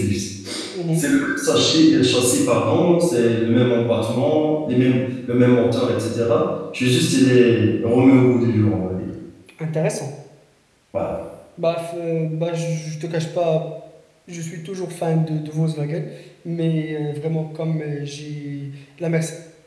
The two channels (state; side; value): identical; both; correlation 1.00